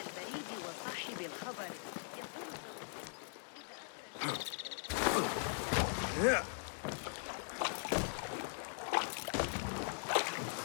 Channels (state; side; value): silent; right; 51 dB below the other